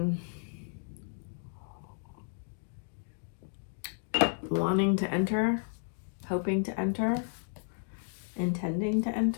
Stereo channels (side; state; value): right; silent; digital silence